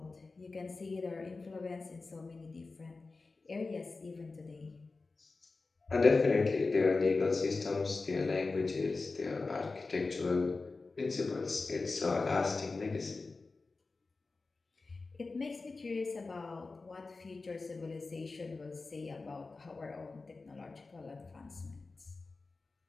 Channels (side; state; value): right; quieter; 3.8 dB